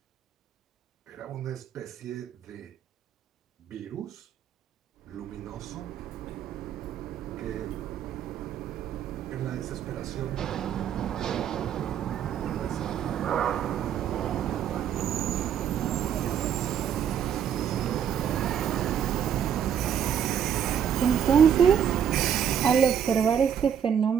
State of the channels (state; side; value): quieter; left; 8.7 dB